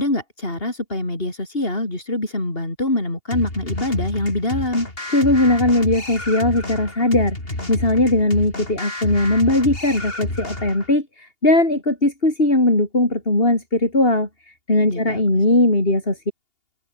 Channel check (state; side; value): late; right; 2.8 ms